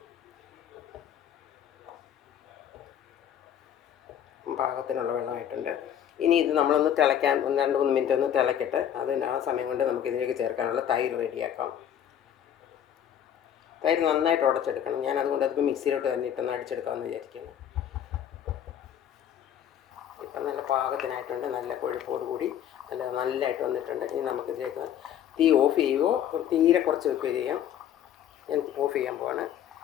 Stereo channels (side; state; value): right; quieter; 9.9 dB